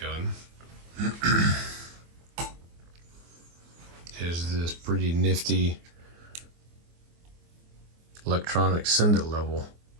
gun is this pretty nifty electronic send-it level.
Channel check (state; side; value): late; left; 24 ms